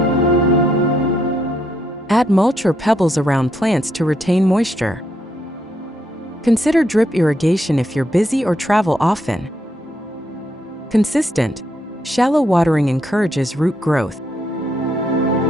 Add mulch or pebbles around plants to retain moisture. Consider drip irrigation if you're busy or travel often. Consistent, shallow watering encourages root growth.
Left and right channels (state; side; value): normal; both; correlation 0.76